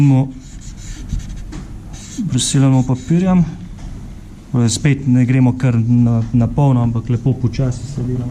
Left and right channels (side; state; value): both; identical; correlation 1.00